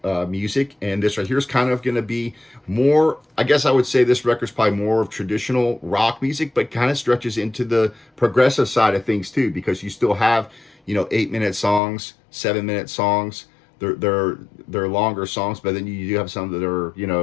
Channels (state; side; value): drops out; right; at 11.8 s